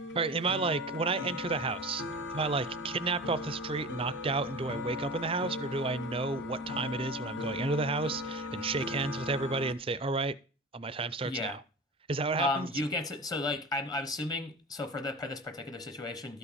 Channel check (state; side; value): normal; both; correlation 0.34